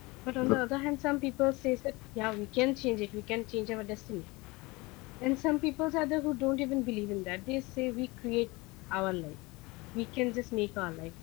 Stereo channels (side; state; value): right; quieter; 24.0 dB